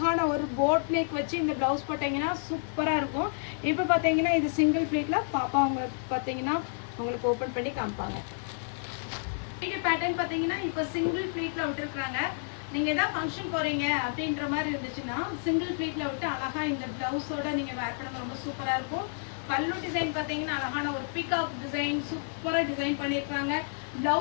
ஒரு போட் நெக் வச்சு இந்த ப்ளவுஸ் போட்டிங்கன்னா சூப்பராக இருக்கும். இப்போ பார்த்தீங்கன்னா இது சிங்கிள் ப்ளீட்டில் பாப்பா உங்களுக்கு பார்த்தீங்கன்னா உங்களுக்கு ஓப்பன் பண்ணி காமிப்பாங்க. வீடியோ பேட்டர்ன் பார்த்தீங்கன்னா இப்போ சிங்கிள் ப்ளீட்டில் விட்டுருக்குறாங்க. நீங்கள் எதாவது ஃபங்க்ஷன் போகிறீங்க அப்படின்ற மாதிரி இருந்துச்சுன்னா சிங்கிள் ப்ளீட்டில் விட்டு அழகாக இந்த ப்ளவுஸோட நீங்கள் வேர் பண்ண ரொம்ப சூப்பராக இருக்கும். பல்லு டிசைன் பார்த்தீங்கன்னா அழகான ஒரு பீகாக் டிசைன் சூப்பராக டிசைன் பண்ணியிருக்காங்க.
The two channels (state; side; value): silent; right; digital silence